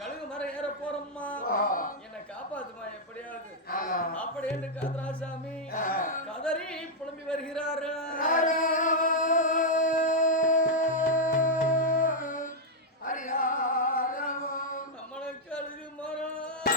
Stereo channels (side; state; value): both; normal; correlation -0.02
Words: கழுகு மரம் ஏற போறம்மா, என்னை காப்பாத்துமா எப்படியாவது அப்படி என்று காதராசாமி கதறி புலம்பி வருகிறார். நம்மளுக்கு கழுகு மரம்